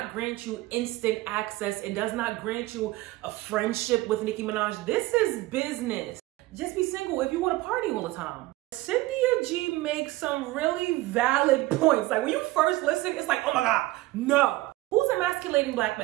grant you instant access. It does not grant you a friendship with Nicki Minaj. This is business. Just be single if you want to party all the time. Cynthia G makes some really valid points. Like when you first listen, it's like, oh my God, no. Who's emasculating black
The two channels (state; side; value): quieter; left; 18.8 dB